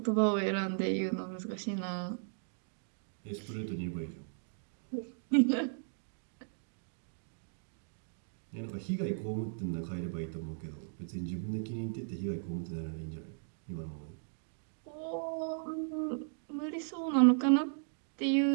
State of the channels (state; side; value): silent; left; digital silence